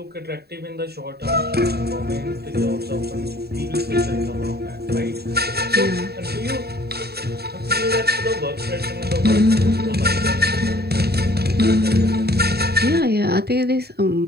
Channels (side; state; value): left; late; 0.47 ms